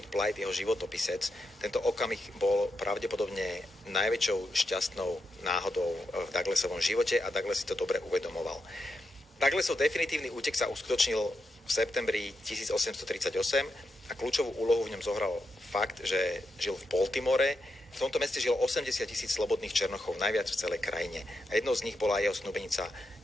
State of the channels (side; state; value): both; normal; correlation 0.85